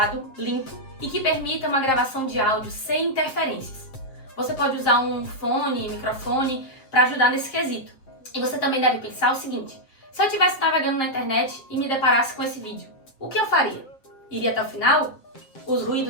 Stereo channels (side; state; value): right; late; 7.6 ms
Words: limpo e que permita uma gravação de áudio sem interferências. Você pode usar um fone, microfone para ajudar nesse quesito. E você também deve pensar o seguinte: se eu estivesse navegando na internet e me deparasse com esse vídeo, o que eu faria? Iria até o final? Os